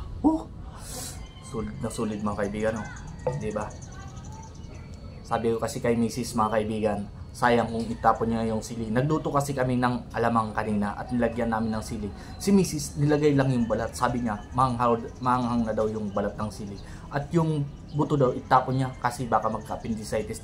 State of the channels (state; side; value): identical; both; correlation 1.00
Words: Sulit na sulit mga kaibigan, oh. Diba? Sabi ko kasi kay Mrs. mga kaibigan, sayang kung itapon niya yung sili. Nagluto kasi kami ng alamang kanina at nilagyan namin ng sili. Si Mrs. nilagay lang yung balat. Sabi niya, manghang na daw yung balat ng sili. At yung buto daw, itapon niya kasi baka magka-appendicitis